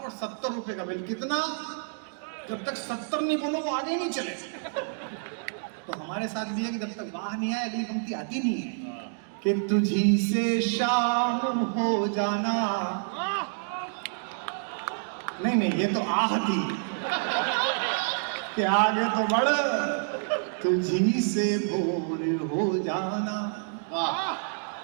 70 रुपए का बिल। कितना? जब तक 70 नहीं बोलो वो आगे ही नहीं चले। तो हमारे साथ भी है कि जब तक बाहर नहीं आए अगली पंक्ति आती नहीं है। कि तुझी से शाम हो जाना। नहीं ये तो आह थी कि आगे तो बढ़, तुझी से भोर हो जाना।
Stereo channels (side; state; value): left; silent; digital silence